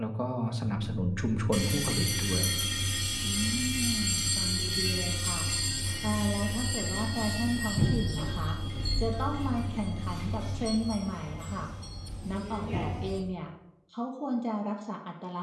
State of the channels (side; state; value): both; identical; correlation 1.00